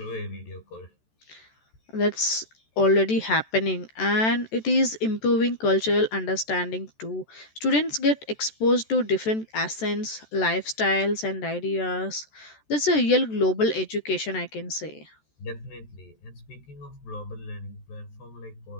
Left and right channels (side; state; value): right; late; 14 ms